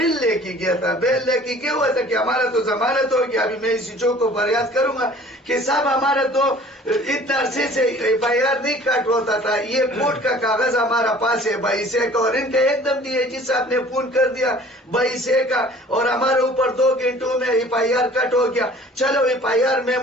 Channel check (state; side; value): normal; both; correlation 0.49